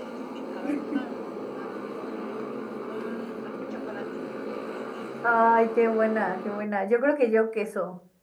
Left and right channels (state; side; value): identical; both; correlation 1.00